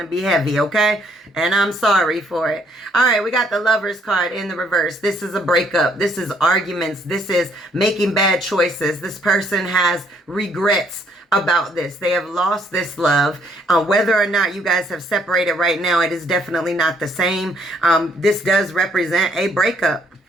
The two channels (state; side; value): normal; both; correlation 0.67